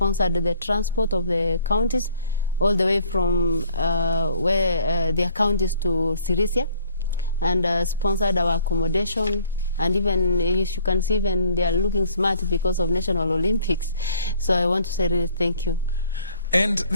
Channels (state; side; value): inverted; both; correlation -0.58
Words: the transport of the counties all the way from where their counties to Sirisia, and sponsored our accommodation. And even, as you can see, even they are looking smart because of National Olympics. So I want to say really thank you. And